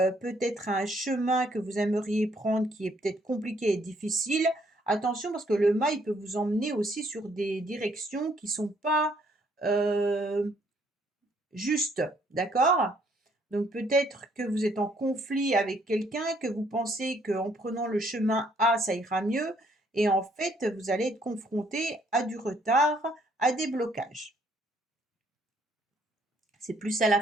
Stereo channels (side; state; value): both; normal; correlation 0.67